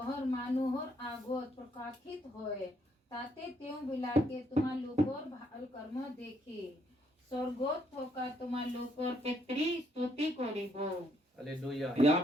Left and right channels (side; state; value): both; normal; correlation 0.71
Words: मानुहर आगोत प्रकाशित होए, ताते त्यों बिलाके तुम्हार लोकर भाल कर्म देखी, स्वर्गोत होकर तुम्हार लोकर पितरी स्तुति करिबो। हालेलुया। यहाँ